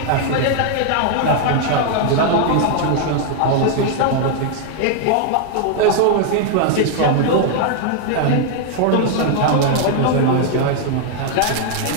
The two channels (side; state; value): both; different; correlation 0.00